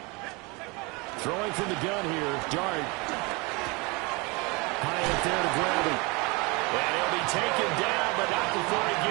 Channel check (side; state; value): left; quieter; 27.3 dB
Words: Throwing from the gun here, Dart. High up there to grab him. And he'll be taken down, but not before he